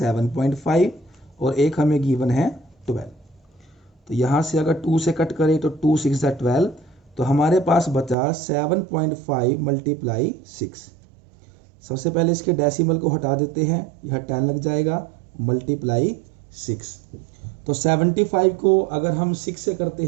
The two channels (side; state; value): left; drops out; at 8.2 s